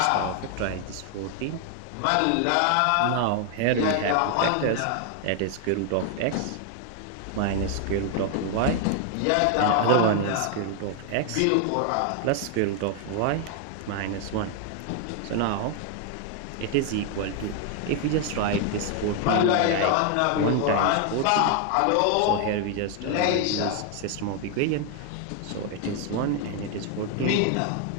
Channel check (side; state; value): both; different; correlation 0.00